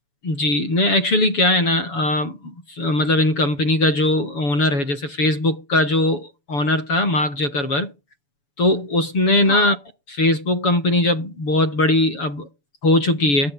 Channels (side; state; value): right; late; 7.0 ms